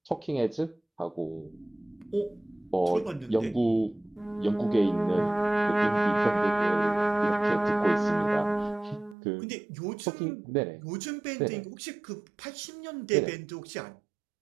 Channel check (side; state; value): left; drops out; at 9.2 s